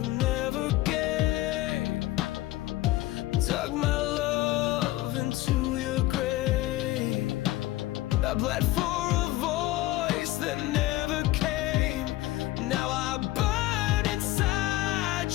gave, dug my love into your grave. I bled for a voice that never came. Now I burn inside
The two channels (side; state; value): right; quieter; 17.0 dB